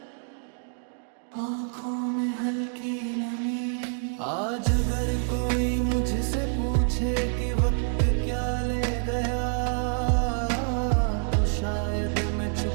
आंखों में हल्की नमी। आज अगर कोई मुझसे पूछे कि वक्त क्या ले गया, तो शायद मैं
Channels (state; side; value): silent; left; digital silence